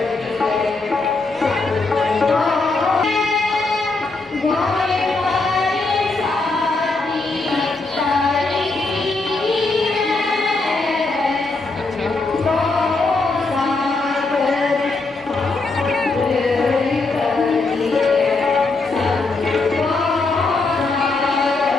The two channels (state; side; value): quieter; right; 3.5 dB